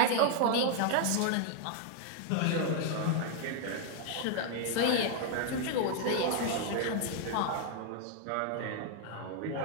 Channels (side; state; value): both; different; correlation 0.00